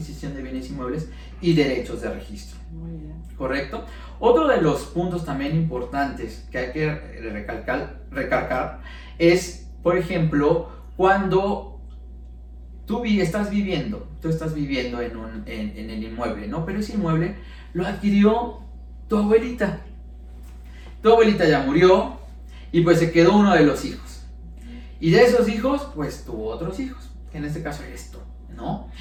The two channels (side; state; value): both; identical; correlation 1.00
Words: de bienes inmuebles y derechos de registro. Muy bien. ¿Correcto? Otro de los puntos también importantes que hay que recalcar es, por ejemplo, cuando tú estás viviendo en el inmueble, ¿no? Pero ese inmueble lo adquirió tu abuelita. Tu abuelita ya murió y pues se quedó uno de los hijos. Y de esos hijos, pues tuvo otros hijos, que en este caso eres tú, ¿no?